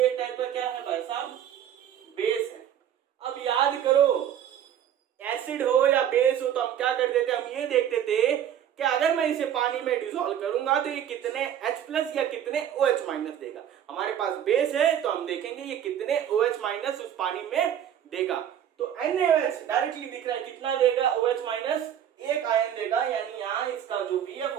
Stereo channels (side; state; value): left; quieter; 9.9 dB